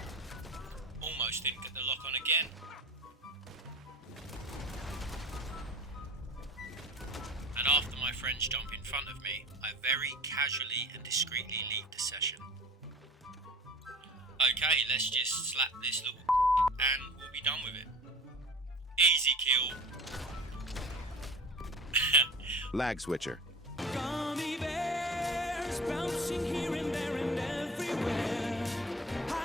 Almost didn't get the lock on again. And after my friends jump in front of me, I very casually and discreetly leave the session. Okay, let's just slap this little and we'll be done with it. Easy kill. Lag switcher. Gummy bears bouncing here and there and everywhere.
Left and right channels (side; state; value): both; normal; correlation 0.39